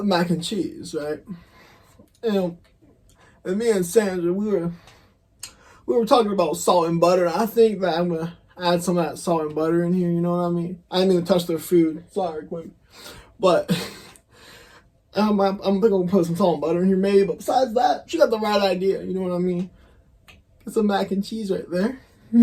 mac and cheese, right? And me and Sandra, we were talking about salt and butter. I think that I'm gonna add some of that salt and butter in here. You know what I mean? I didn't even touch their food. Sorry, Quinn. But I'm gonna put some salt and butter in here, maybe. But besides that, she got the right idea. You know what I mean? Get some mac and cheese right there.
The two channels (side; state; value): both; identical; correlation 1.00